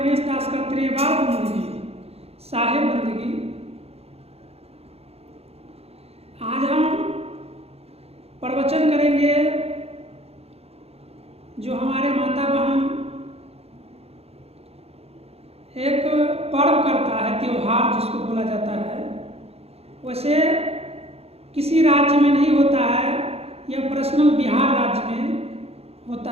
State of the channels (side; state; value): left; late; 0.29 ms